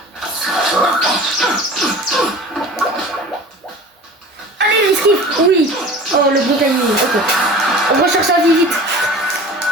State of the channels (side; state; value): both; normal; correlation 0.39